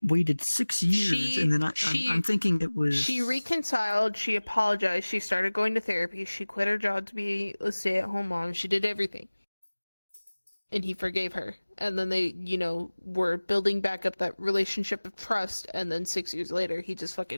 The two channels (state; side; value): inverted; both; correlation -1.00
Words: Waited 6 years, and then I'm thinking it was She reconciled, she apologized, she started going to therapy, she quit her job to be a stay-at-home mom, she did everything. And he forgave her. And then they, were building back up that relationship of trust, and then 6 years later, he just